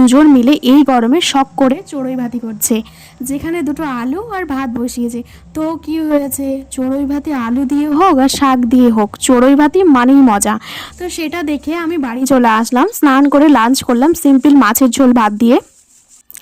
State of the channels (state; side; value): identical; both; correlation 1.00